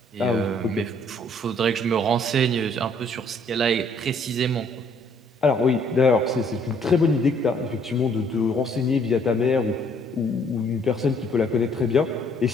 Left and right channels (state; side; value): normal; both; correlation 0.63